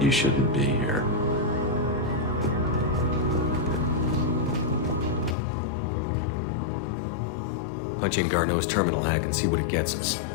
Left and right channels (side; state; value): right; drops out; at 5.4 s